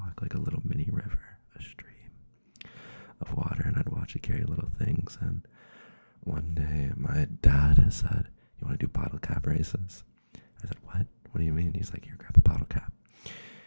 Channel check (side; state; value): both; inverted; correlation -1.00